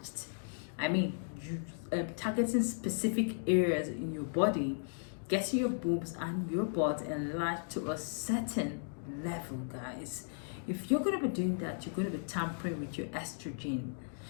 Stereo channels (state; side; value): silent; right; digital silence